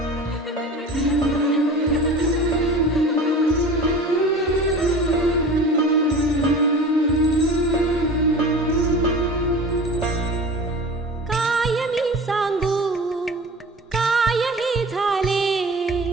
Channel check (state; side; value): normal; both; correlation 0.37